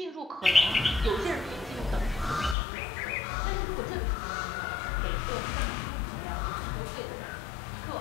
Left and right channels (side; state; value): right; drops out; at 2.6 s